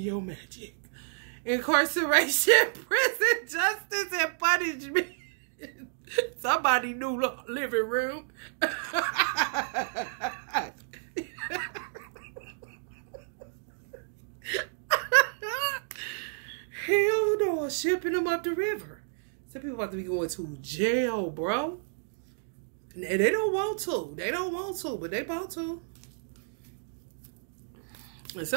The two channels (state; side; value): silent; left; digital silence